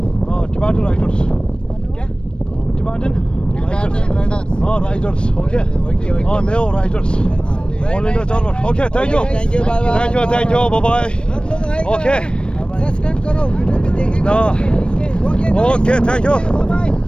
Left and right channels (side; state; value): right; late; 0.056 ms